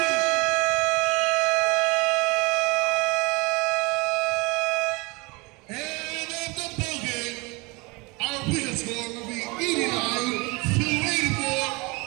And of the ball game, our win score will be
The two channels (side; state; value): left; quieter; 26.5 dB